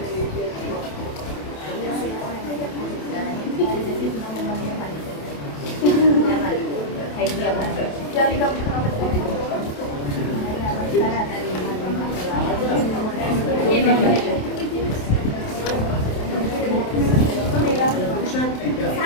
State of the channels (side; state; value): right; late; 27 ms